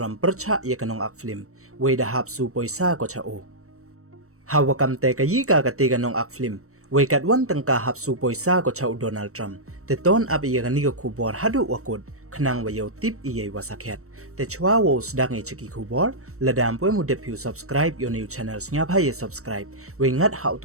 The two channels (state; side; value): late; left; 0.64 ms